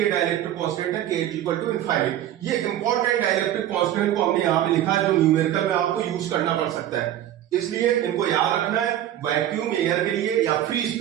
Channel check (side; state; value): left; quieter; 12.1 dB